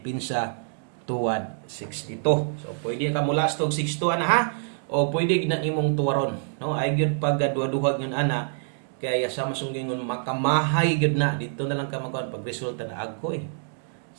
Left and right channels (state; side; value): silent; left; digital silence